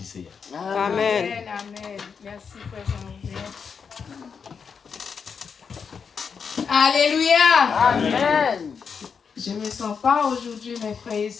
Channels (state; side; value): quieter; right; 6.2 dB